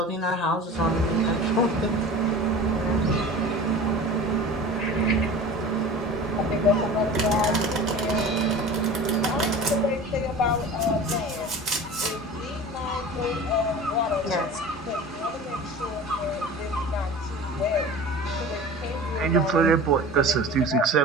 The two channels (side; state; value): both; normal; correlation 0.37